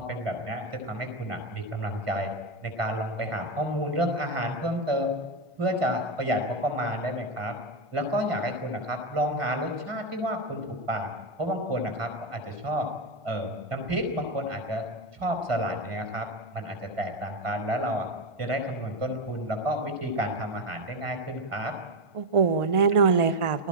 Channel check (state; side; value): late; left; 1.5 ms